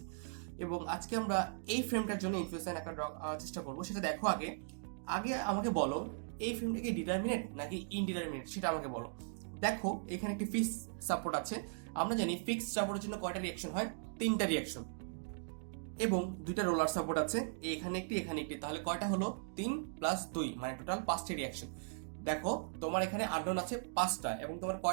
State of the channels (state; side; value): silent; left; digital silence